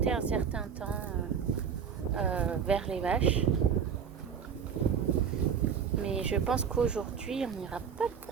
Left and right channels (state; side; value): quieter; left; 7.2 dB